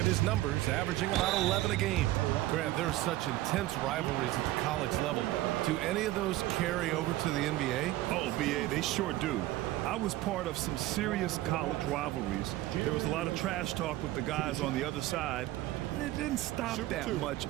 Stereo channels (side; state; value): left; quieter; 16.3 dB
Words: his numbers, averaging about 11 a game. Grant, there's such intense rivalries at the college level. Do any of those carry over to the NBA? Oh, BA, they sure do. I was part of some serious college rivalries. There was a lot of trash talk with the guys on the other side, and it didn't stop that much